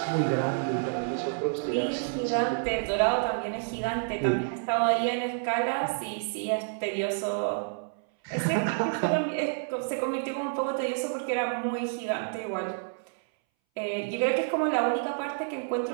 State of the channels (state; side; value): silent; left; 59 dB below the other